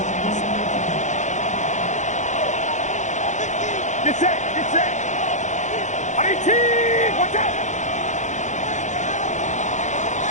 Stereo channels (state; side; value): late; right; 0.35 ms